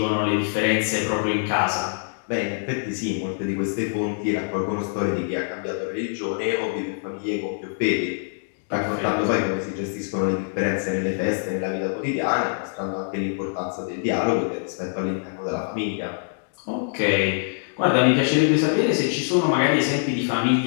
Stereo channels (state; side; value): silent; right; digital silence